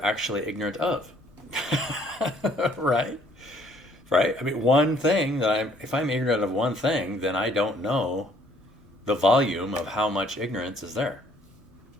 actually ignorant of. Right? Right? I mean, one thing if I'm ignorant of one thing, then I don't know the volume of how much ignorance is there.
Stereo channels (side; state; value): both; normal; correlation 0.62